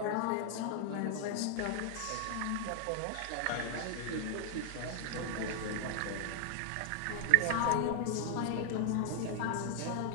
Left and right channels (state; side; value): different; both; correlation 0.00